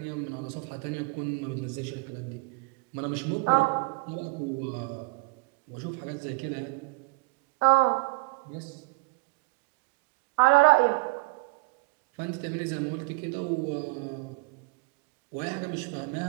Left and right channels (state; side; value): quieter; left; 25.2 dB